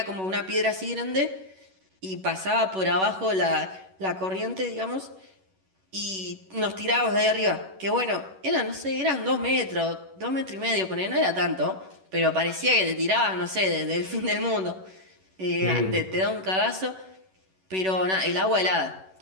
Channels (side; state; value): left; late; 11 ms